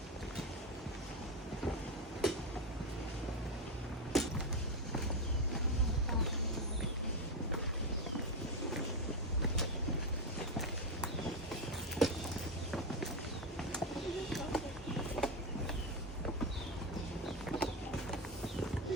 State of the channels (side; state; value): both; normal; correlation 0.10